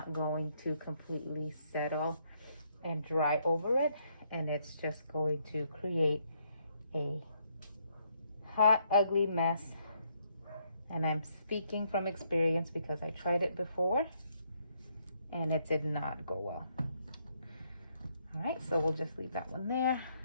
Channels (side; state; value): both; inverted; correlation -0.73